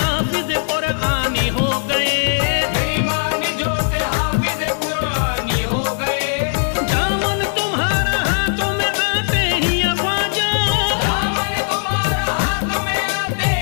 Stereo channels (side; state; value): right; silent; digital silence